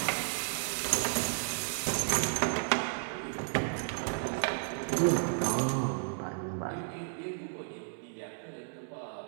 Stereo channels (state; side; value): silent; left; digital silence